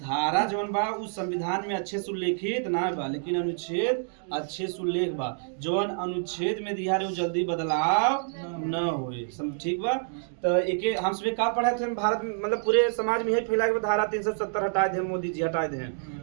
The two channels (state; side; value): silent; left; digital silence